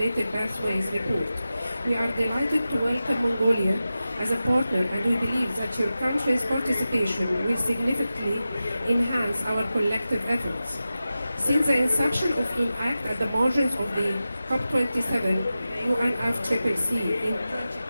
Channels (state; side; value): inverted; both; correlation -0.93